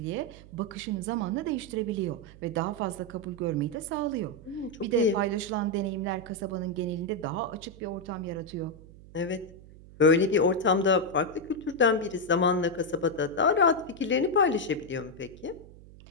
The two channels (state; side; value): noise; right; hum, 20 dB below the sound